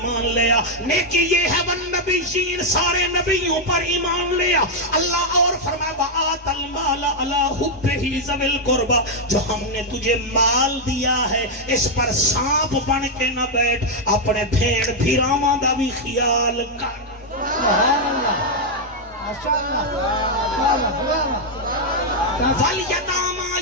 لیا نیکی یہ ہے والنبیین سارے نبیوں پر ایمان لیا اللہ اور فرمایا وآت المال علی حبہ ذوی القربى جو ہم نے تجھے مال دیا ہے اس پر سانپ بن کے نہ بیٹھ اپنے بھیڑ بھیراواں دا بھی خیال کر سبحان اللہ ماشاءاللہ والیتامى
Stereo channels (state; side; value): normal; both; correlation -0.01